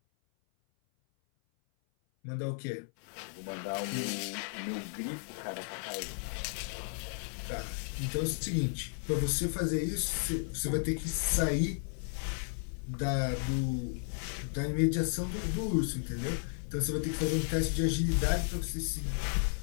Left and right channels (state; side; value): silent; right; 55 dB below the other